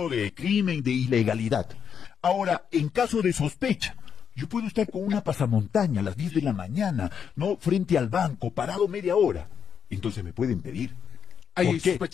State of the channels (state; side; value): quieter; right; 7.4 dB